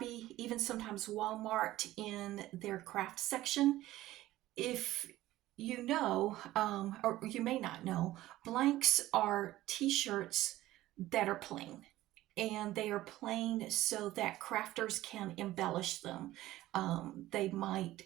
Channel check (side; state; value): left; quieter; 15.8 dB